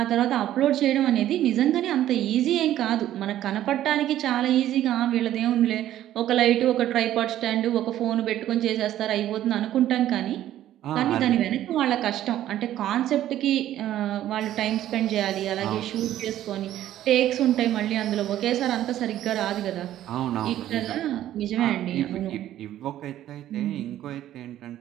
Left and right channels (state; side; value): quieter; left; 12.6 dB